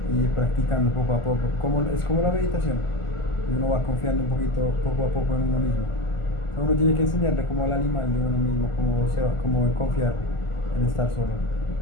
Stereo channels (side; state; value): right; late; 1.4 ms